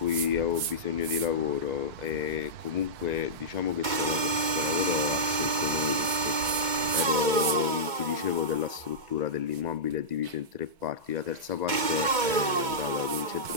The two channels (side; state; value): left; late; 2.2 ms